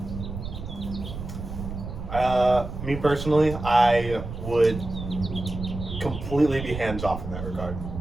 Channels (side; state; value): right; noise; rumble, 8 dB below the sound